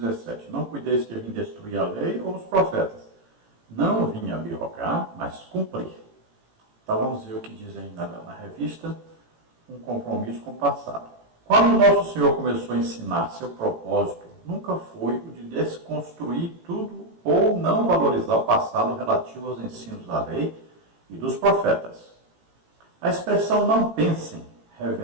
Não cuideis que eu vim destruir a lei ou os profetas. Não vim abrogar, mas cumprir. Então vamos ver o que diz aí na revista, um compromisso com o passado. Quando o nosso Senhor começou a ensinar, seu propósito nunca foi o de desconstruir tudo ou não valorizar o passado relativo aos ensinos da lei e dos profetas. A expressão não pensem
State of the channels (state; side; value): late; left; 18 ms